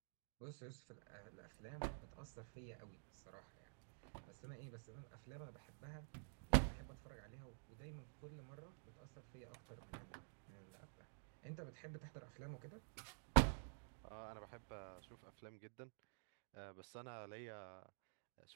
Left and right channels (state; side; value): silent; left; digital silence